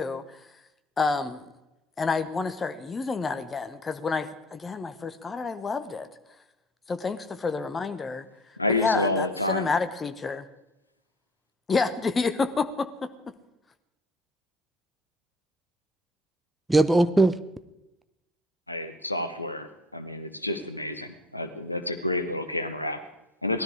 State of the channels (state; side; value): normal; both; correlation 0.48